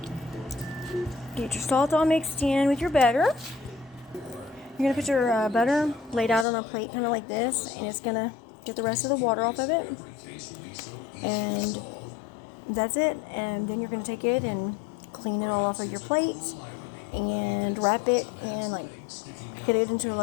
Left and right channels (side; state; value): right; drops out; at 6.5 s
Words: get your salt all mixed in with your butter. You're going to put your butter laid out on a plate kind of like this, and it's going to get the rest of the water off of it. And that's it. And then you're going to take it and clean it all off of your plate and wrap it in, get it into a